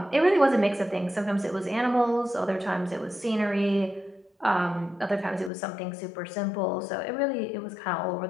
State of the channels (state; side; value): drops out; right; at 5.5 s